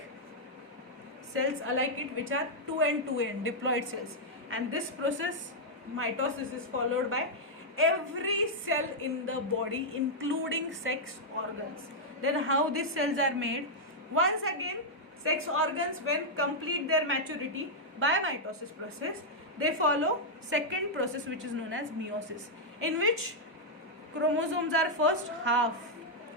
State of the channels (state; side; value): normal; both; correlation -0.05